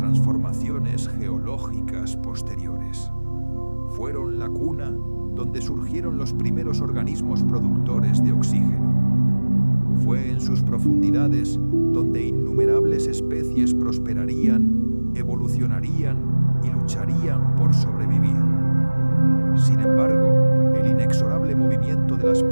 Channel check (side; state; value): both; inverted; correlation -1.00